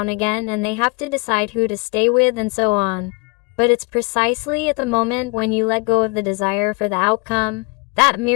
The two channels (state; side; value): quieter; right; 28.9 dB